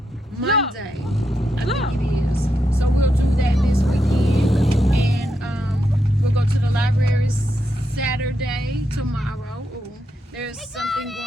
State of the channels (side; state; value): both; normal; correlation 0.83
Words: I think it is. So we'll do that this weekend, and we'll go to the library Saturday tomorrow. Ooh, there's something